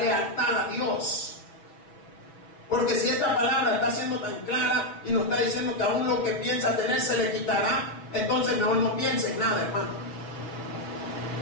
a Dios. Porque si esta palabra está siendo tan clara y nos está diciendo que aún lo que piensa tener se le quitará, entonces mejor no piense en nada, hermano.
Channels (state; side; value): late; right; 6.1 ms